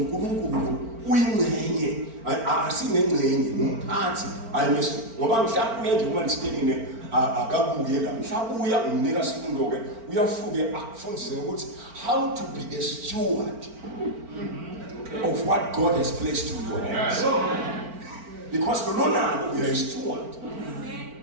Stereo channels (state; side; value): late; left; 4.4 ms